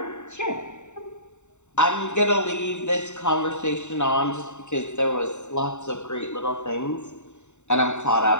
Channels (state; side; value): late; right; 0.84 ms